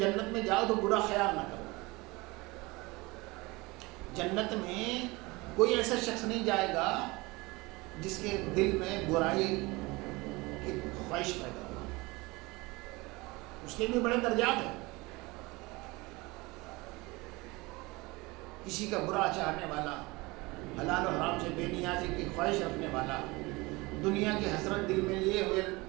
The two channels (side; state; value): left; quieter; 23.5 dB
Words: میں جاؤ تو برا خیال نہ کرو. جنت میں کوئی ایسا شخص نہیں جائے گا جس کے دل میں برائی کی خواہش پیدا ہو. اس کے بھی بڑے درجات ہیں. کسی کا برا چاہنے والا، حلال و حرام سے بے نیازی کی خواہش رکھنے والا، دنیا کی حسرت دل میں لیے ہوئے،